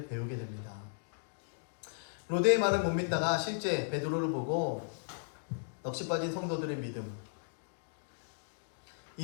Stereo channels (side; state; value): right; silent; digital silence